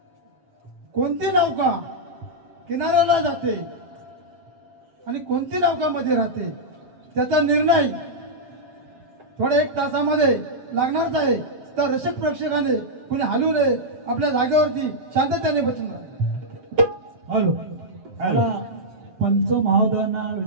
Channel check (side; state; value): left; late; 7.5 ms